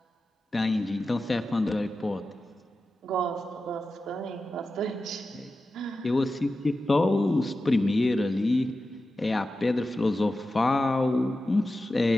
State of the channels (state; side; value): normal; both; correlation 0.93